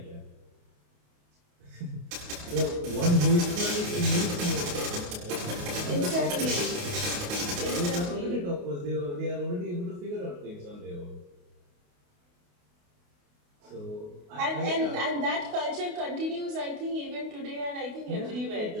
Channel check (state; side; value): late; left; 28 ms